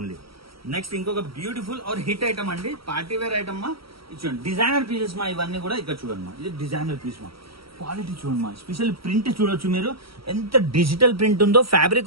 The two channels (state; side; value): late; left; 0.75 ms